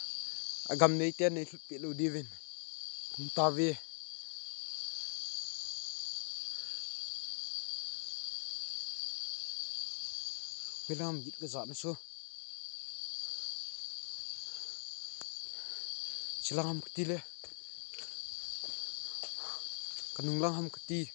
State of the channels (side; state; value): right; silent; digital silence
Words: agam nei ten nei pi lu divin kum ta vi Wilam git ke zat na so silang ham kti le kanung lang ham kti